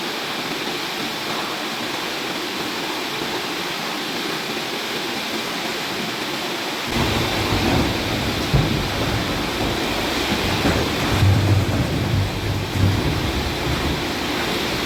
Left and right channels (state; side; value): identical; both; correlation 1.00